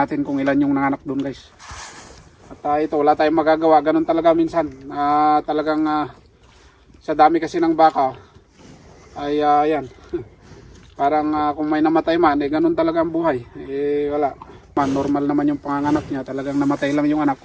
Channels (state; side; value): identical; both; correlation 1.00